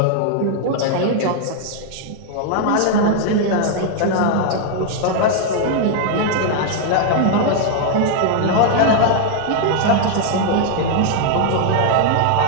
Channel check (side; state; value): both; different; correlation 0.00